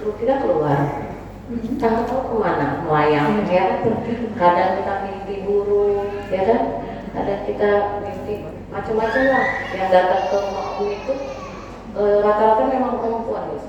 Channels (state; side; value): identical; both; correlation 1.00